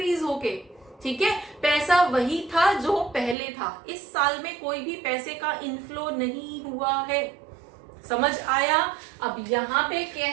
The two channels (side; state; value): left; drops out; at 3.4 s